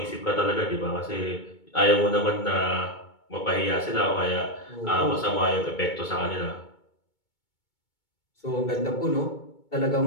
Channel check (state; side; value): late; right; 2.2 ms